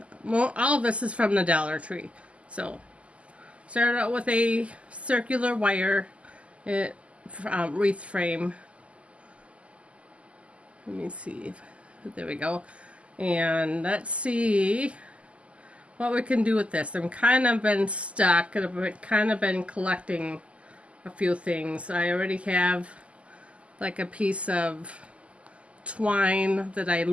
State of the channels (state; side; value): late; left; 0.059 ms